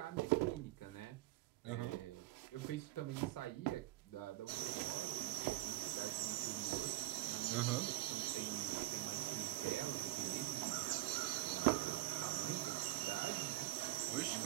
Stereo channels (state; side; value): quieter; left; 18.5 dB